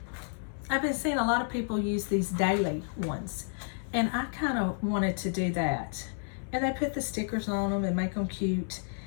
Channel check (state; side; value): silent; right; 57 dB below the other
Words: seeing a lot of people use these daily ones, and I kind of wanted to do that. And they put the stickers on them and make them cute.